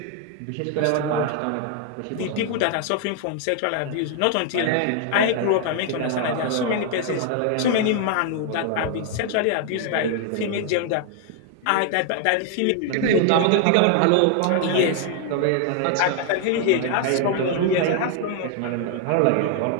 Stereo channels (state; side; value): different; both; correlation 0.00